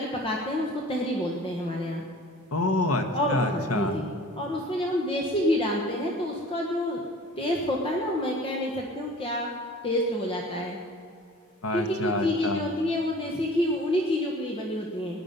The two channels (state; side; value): normal; both; correlation 0.46